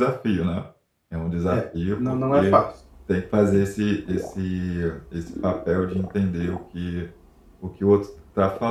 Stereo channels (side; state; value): both; identical; correlation 1.00